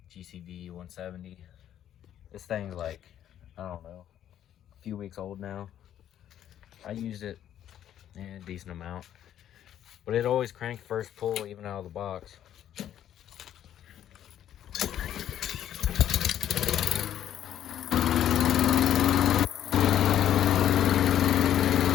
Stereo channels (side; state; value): right; quieter; 10.8 dB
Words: GCV 170. This thing's like, I don't know, a few weeks old now. I used it a decent amount, but it always cranked first pull even out of the box.